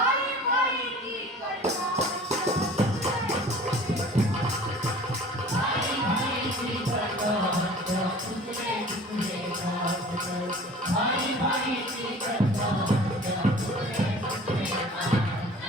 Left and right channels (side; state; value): both; normal; correlation 0.45